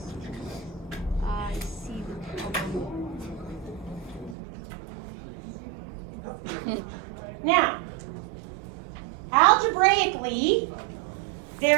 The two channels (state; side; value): drops out; left; at 4.4 s